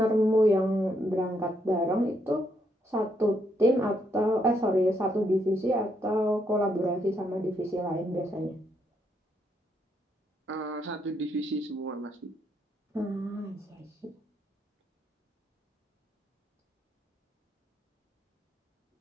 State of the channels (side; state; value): both; normal; correlation 0.76